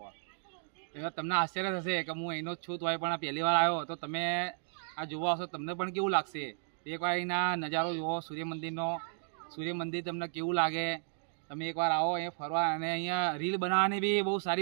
એટલે તમને આશ્ચર્ય થશે કે હું અહીંનો જ છું, તો પણ આ પહેલી વાર આવ્યો. તો તમે આ જોવા આવશો, તમને પણ કેવું લાગશે? એકવાર અહીંના નજારો જુઓ સૂર્ય મંદિરનો. સૂર્ય મંદિર તમને કેવું લાગે? તમે એકવાર આવો અહીંયા ફરવા, અને અહીંયા રીલ બનાવવાની બી બહુ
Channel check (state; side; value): silent; left; digital silence